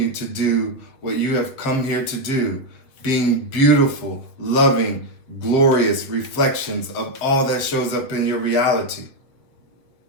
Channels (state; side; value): late; right; 7.5 ms